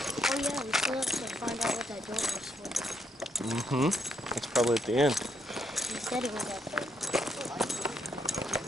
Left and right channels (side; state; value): both; normal; correlation 0.76